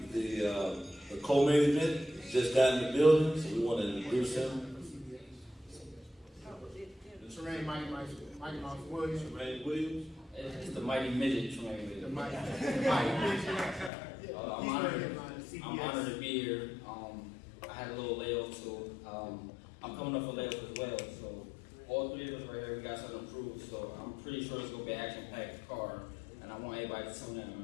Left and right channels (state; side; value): drops out; right; at 13.9 s